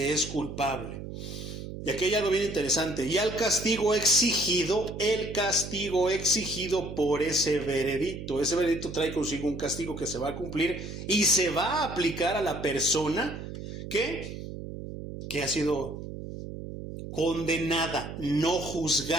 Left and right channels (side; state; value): right; noise; hum, 9 dB below the sound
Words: es culpable. Y aquí hay algo bien interesante. Y el castigo exigido por ese veredicto. Ese veredicto trae consigo un castigo que se va a cumplir y se va a aplicar a la persona que ha sido condenada, no